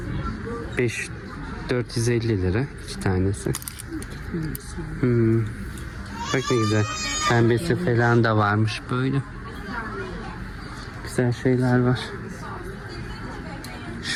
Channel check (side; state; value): both; identical; correlation 1.00